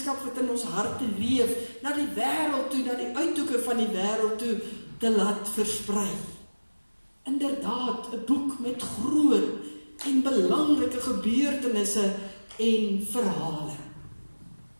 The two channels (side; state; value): both; inverted; correlation -1.00